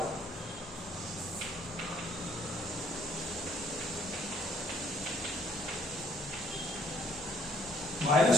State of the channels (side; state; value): both; normal; correlation 0.63